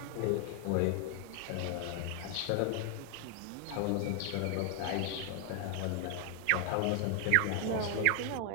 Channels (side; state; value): both; different; correlation 0.00